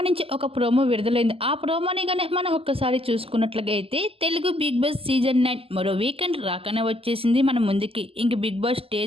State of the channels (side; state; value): left; late; 0.27 ms